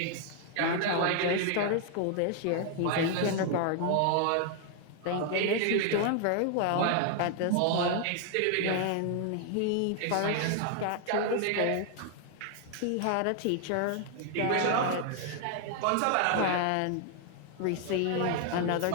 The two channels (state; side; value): different; both; correlation 0.00